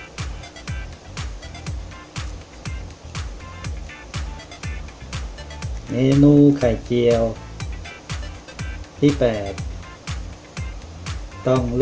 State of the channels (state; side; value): identical; both; correlation 1.00